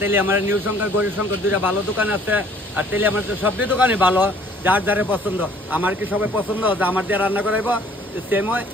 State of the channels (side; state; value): both; normal; correlation 0.57